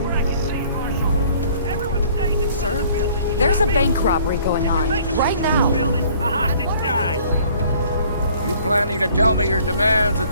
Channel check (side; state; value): both; inverted; correlation -0.55